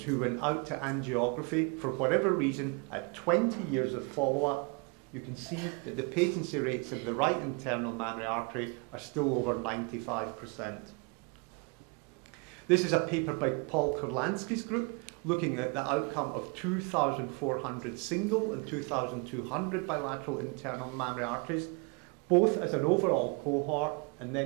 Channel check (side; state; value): left; quieter; 32.6 dB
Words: who went out to angiography for whatever reason at 20 years of follow-up, you can see that the patency rates of the right internal mammary artery are still over 95%. This is a paper by Paul Kurlansky's group looking at the outcome of 2,400 single and 2,200 bilateral internal mammary arteries, both as an overall cohort and